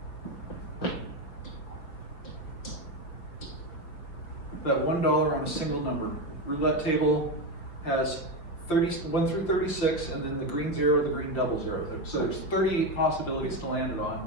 bet $1 on a single number. Roulette table has 1 through 36, and then the green 0, the green double 0. So there's 38 possibilities to land it on.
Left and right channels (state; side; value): late; right; 5.5 ms